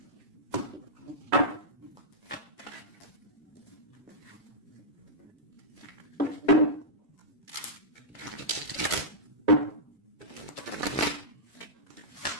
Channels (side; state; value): both; normal; correlation -0.12